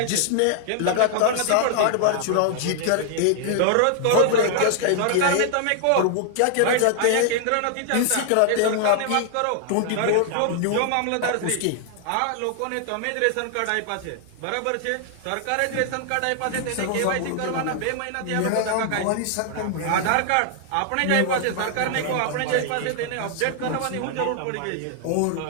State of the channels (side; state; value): both; different; correlation 0.00